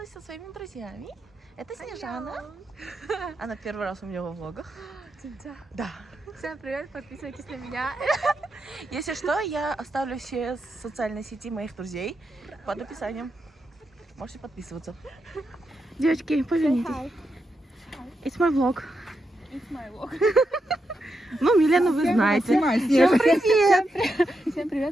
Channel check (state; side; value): normal; both; correlation 0.85